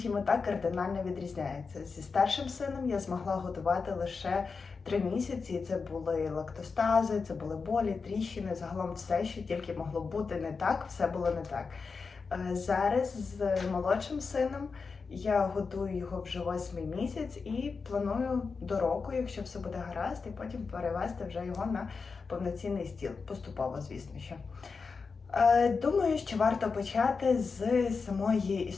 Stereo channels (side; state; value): right; quieter; 4.9 dB